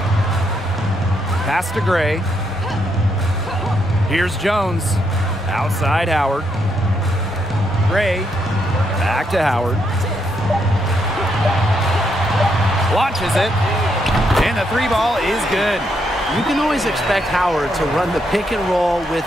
Pass to Gray. Here's Jones. Outside Howard. Gray. Back to Howard. Launches it. And the three ball is good. You can always expect Howard to run the pick and roll with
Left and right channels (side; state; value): both; normal; correlation 0.77